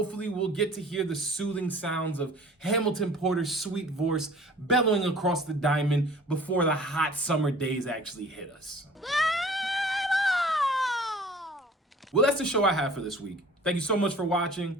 we'll get to hear the soothing sounds of Hamilton Porter's sweet voice bellowing across the diamond before the hot summer days actually hit us. Well, that's the show I have for this week. Thank you so much for watching.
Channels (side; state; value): both; normal; correlation 0.48